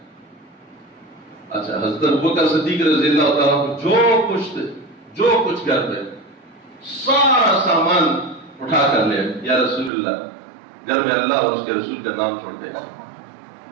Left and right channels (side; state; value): left; drops out; at 9.9 s